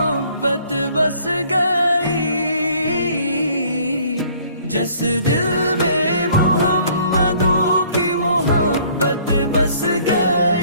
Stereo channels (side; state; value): both; inverted; correlation -0.57